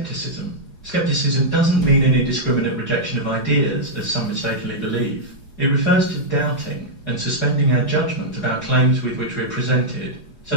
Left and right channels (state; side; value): late; right; 4.8 ms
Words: Skepticism doesn't mean an indiscriminate rejection of ideas, as some mistakenly believe. It refers to doubting and suspending our judgment about claims with which we're presented, so